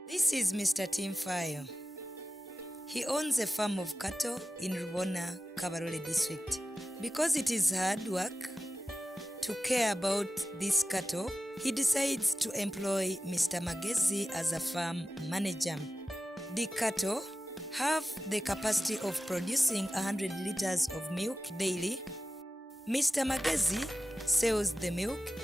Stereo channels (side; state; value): both; normal; correlation 0.94